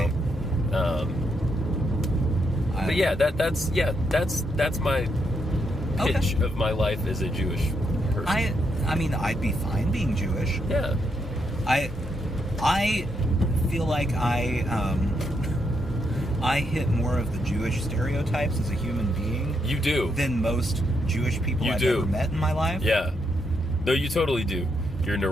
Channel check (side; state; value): both; normal; correlation 0.79